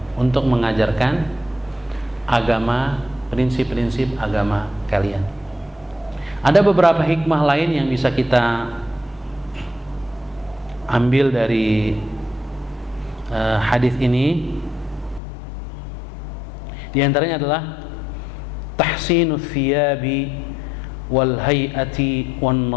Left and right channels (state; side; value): drops out; right; at 15.2 s